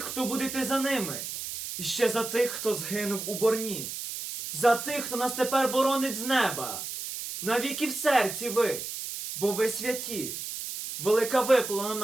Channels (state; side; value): noise; right; hiss, 7 dB below the sound